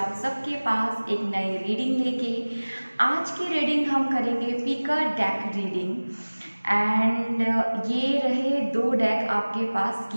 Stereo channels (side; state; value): both; inverted; correlation -1.00